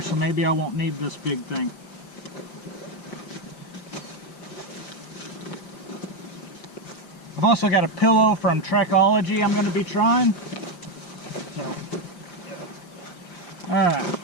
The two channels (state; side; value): late; right; 5.6 ms